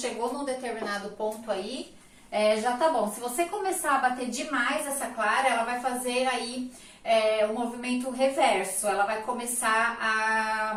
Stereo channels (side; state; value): both; identical; correlation 1.00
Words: num determinado ponto aí, já tá bom. Se você começar a bater demais essa clara, ela vai fazer aí o movimento reverso. Ela vai começar